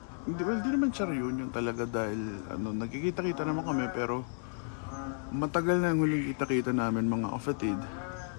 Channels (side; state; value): right; silent; 56 dB below the other